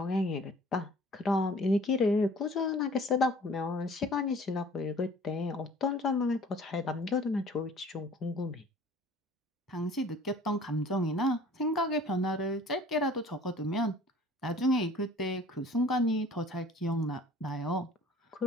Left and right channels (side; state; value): both; normal; correlation 0.50